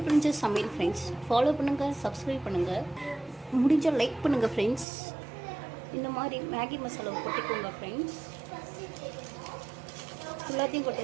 பிரின்சஸ் சமையல் ஃப்ரெண்ட்ஸ் ஃபாலோ பண்ணுங்கள், சப்ஸ்கிரைப் பண்ணுங்கள், முடிஞ்சால் லைக் பண்ணுங்கள் ஃப்ரெண்ட்ஸ். இந்த மாதிரி மேகி மசாலா கொட்டிக்கோங்க ஃப்ரெண்ட்ஸ். எல்லாத்தையும்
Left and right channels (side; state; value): left; drops out; at 4.9 s